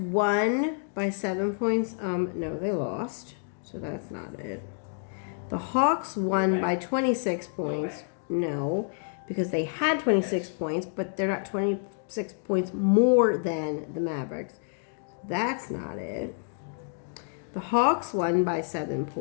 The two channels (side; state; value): right; silent; digital silence